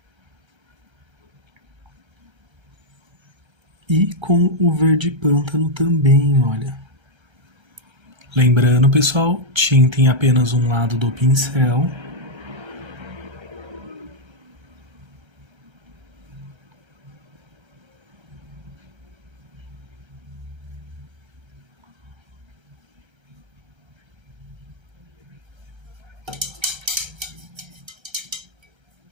E com o verde pântano também, olha. Lembrando, pessoal, tinta em apenas um lado do pincel.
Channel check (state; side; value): late; left; 1.3 ms